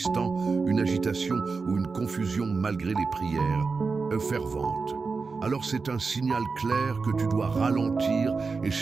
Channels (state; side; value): quieter; left; 4.5 dB